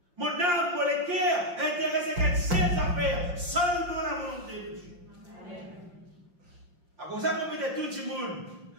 Mon âme, mon cœur, intéressé qu'à ses affaires, seulement la volonté de Dieu. À cause de ça, qu'on peut dire tout le monde,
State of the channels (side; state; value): left; late; 5.7 ms